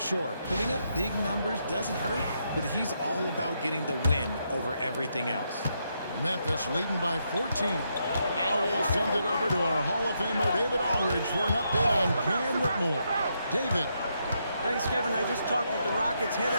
putting up big numbers doesn't hurt, but he's all about getting the win over everything else. Memphis leading by 14. Now we'll send it over to our Hall of Famer David Aldridge for an update on Cam Whitmore. David. Thanks, Kevin. I just talked with the Rockets' head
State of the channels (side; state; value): both; inverted; correlation -0.79